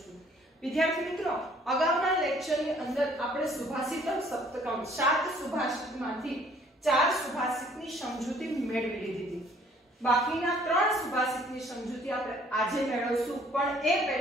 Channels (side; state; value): both; normal; correlation 0.59